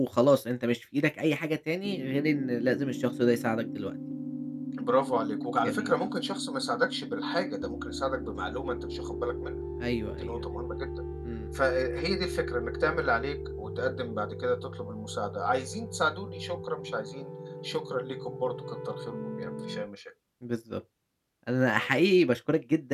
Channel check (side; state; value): both; identical; correlation 1.00